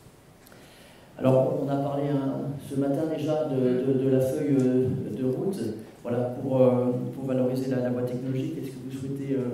Alors, on a parlé ce matin déjà de la feuille de route, voilà, pour valoriser la voie technologique. Est-ce que vous souhaitez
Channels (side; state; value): both; identical; correlation 1.00